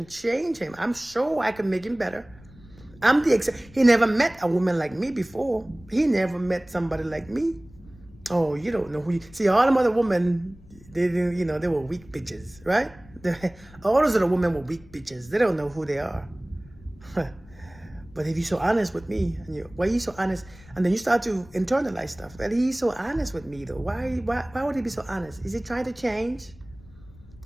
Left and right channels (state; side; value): noise; left; rumble, 23 dB below the sound